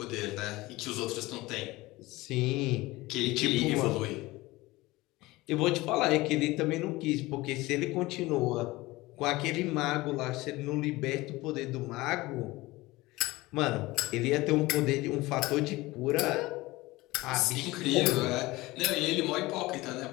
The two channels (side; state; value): right; quieter; 20.1 dB